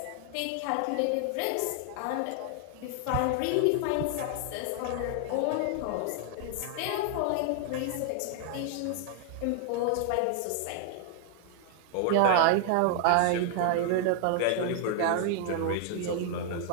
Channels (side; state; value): both; different; correlation 0.00